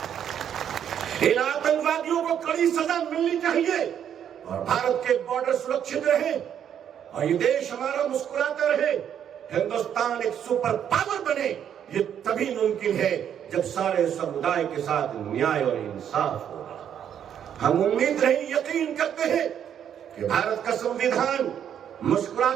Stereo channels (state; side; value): quieter; left; 9.2 dB